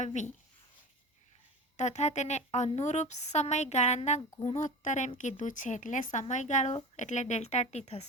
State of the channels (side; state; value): both; normal; correlation 0.32